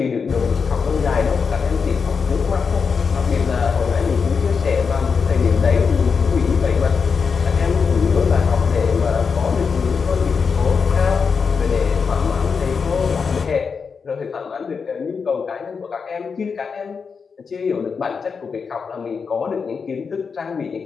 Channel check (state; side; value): quieter; right; 5.6 dB